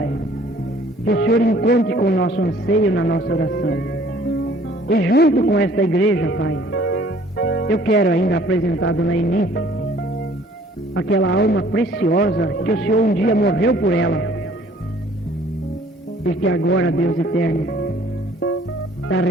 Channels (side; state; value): both; normal; correlation 0.56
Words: que o Senhor encontre com o nosso anseio na nossa oração, e junto com esta igreja, Pai, eu quero ainda apresentar a Dona Eni, aquela alma preciosa que o Senhor um dia morreu por ela, e que agora, Deus eterno, está